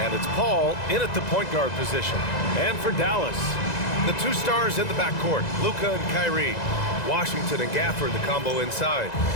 it's Paul in at the point guard position. And for Dallas, the 2 stars in the backcourt, Luka and Kyrie. Washington and Gafford, the combo inside.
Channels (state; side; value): late; right; 2.0 ms